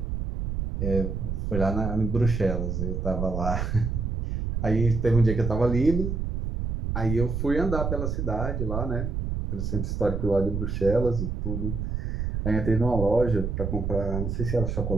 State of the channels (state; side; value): noise; right; rumble, 2 dB below the sound